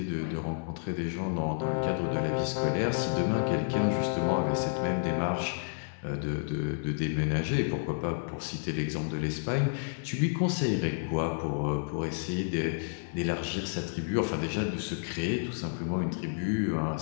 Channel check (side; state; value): right; silent; 57 dB below the other